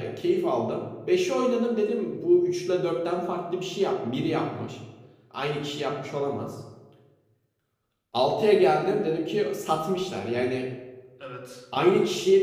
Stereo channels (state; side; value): identical; both; correlation 1.00